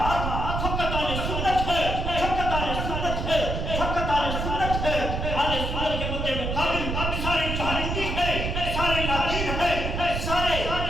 فقط اہل سنت ہے، فقط اہل سنت ہے، فقط اہل سنت ہے. اہل سنت کے مدے مقابل سارے جہالتی ہے، سارے نادین ہے،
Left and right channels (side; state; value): right; noise; rumble, 2 dB below the sound